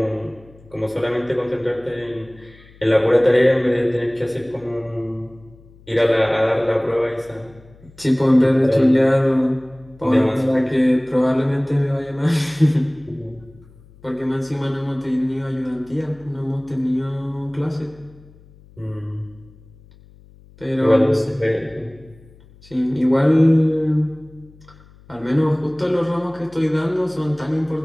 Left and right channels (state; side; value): noise; left; hum, 25 dB below the sound